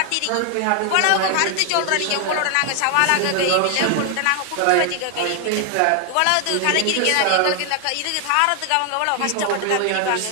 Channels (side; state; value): both; different; correlation 0.00